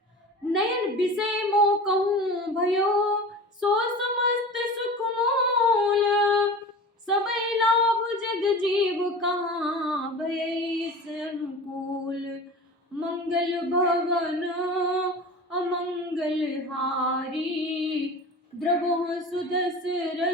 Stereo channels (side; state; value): both; normal; correlation 0.35